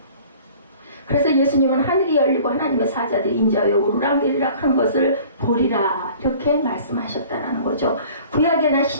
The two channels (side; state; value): both; inverted; correlation -0.48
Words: 그래서 예수님은 하늘이 열리고 하나님의 사자들이 인자하여 오르락내리락 하는 것을 보리라 이렇게 말씀하셨다라는 거죠. 구약에나